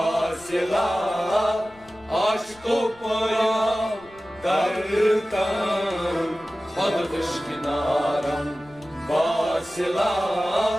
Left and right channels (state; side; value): noise; left; rumble, 26 dB below the sound